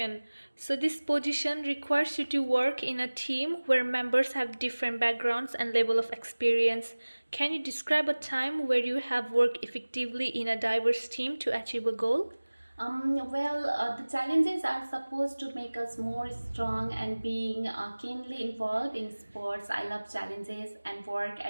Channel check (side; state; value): both; inverted; correlation -1.00